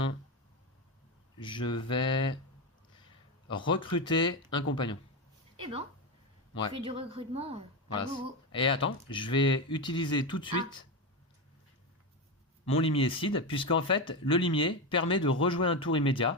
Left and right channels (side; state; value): both; normal; correlation 0.15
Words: je vais recruter un compagnon. Et ben, Ouais. je fais du recrutement. Voilà. À gogo. Et attends, je vais utiliser tout de suite mon limier seed, puisqu'en fait, le limier permet de rejouer un tour